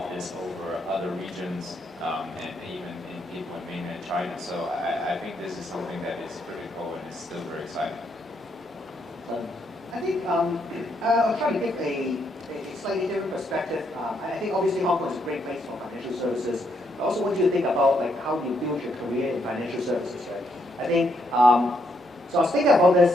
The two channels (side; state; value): both; normal; correlation 0.75